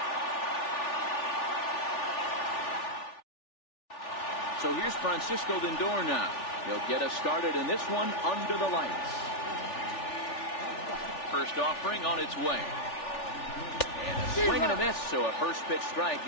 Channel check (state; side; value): late; right; 3.4 ms